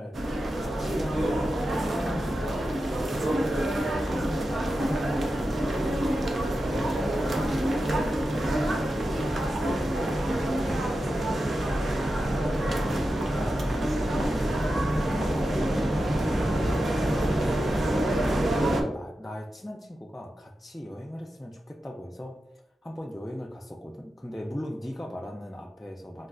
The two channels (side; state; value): both; normal; correlation 0.91